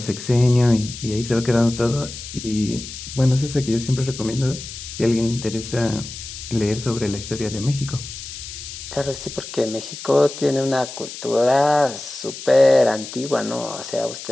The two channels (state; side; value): noise; left; hiss, 11 dB below the sound